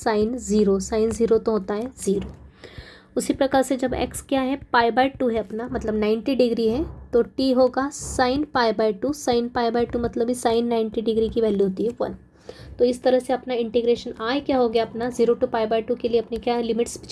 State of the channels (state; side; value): identical; both; correlation 1.00